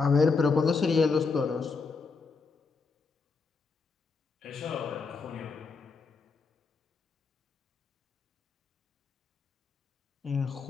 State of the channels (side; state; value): right; quieter; 4.7 dB